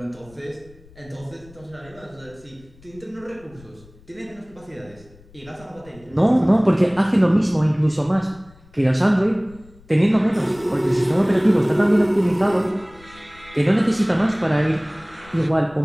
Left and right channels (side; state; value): left; noise; rumble, 25 dB below the sound